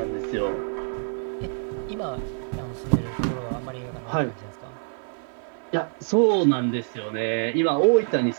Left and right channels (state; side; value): silent; left; digital silence